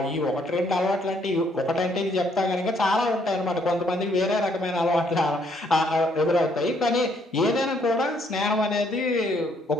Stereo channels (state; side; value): normal; both; correlation 0.68